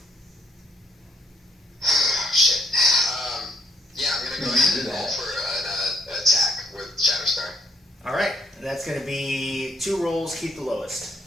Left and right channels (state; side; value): normal; both; correlation 0.70